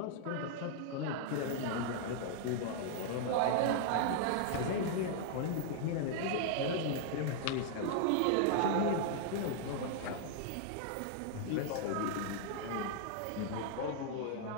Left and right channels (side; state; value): both; different; correlation -0.01